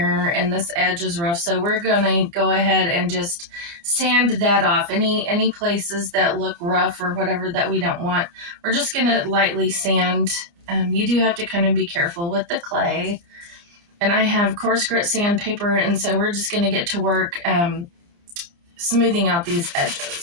and this edge is rough, so we're gonna go ahead and just sand that off. Any places that look rough or whatever that we don't want, we're just gonna lightly sand. You do have to kind of be careful with the clay, and I have coarse grit sandpaper, and so we're just gonna get to work smoothing out these edges.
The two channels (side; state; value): left; late; 29 ms